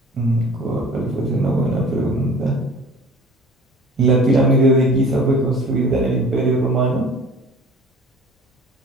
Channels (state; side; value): normal; both; correlation 0.45